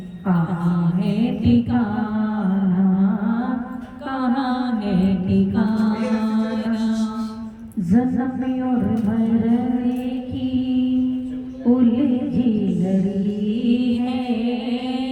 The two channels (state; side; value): identical; both; correlation 1.00